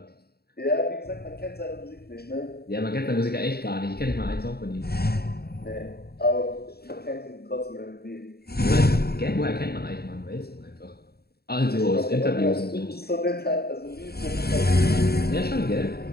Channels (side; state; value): right; late; 0.46 ms